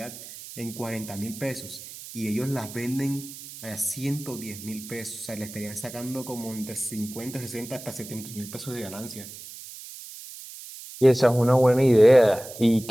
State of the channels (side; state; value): right; noise; hiss, 14 dB below the sound